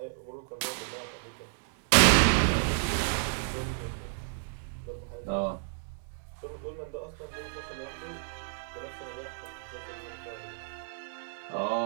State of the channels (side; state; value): left; silent; 57 dB below the other